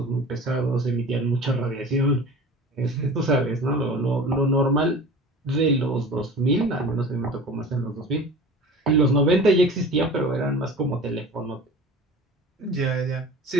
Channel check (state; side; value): normal; both; correlation 0.39